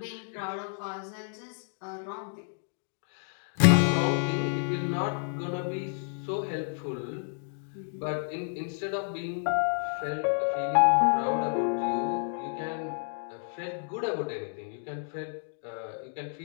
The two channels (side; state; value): right; silent; digital silence